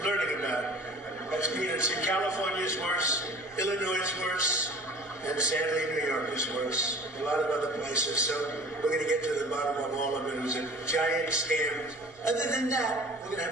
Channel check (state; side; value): normal; both; correlation 0.44